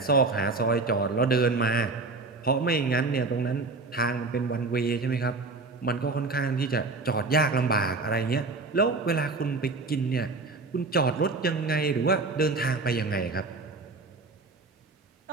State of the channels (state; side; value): quieter; left; 3.7 dB